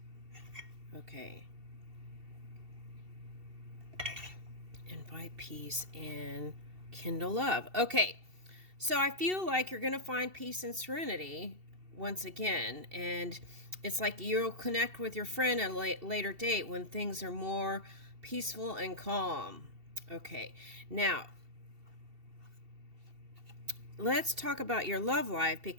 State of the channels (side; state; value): left; late; 2.7 ms